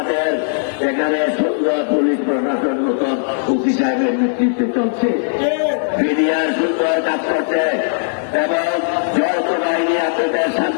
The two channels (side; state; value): right; silent; 64 dB below the other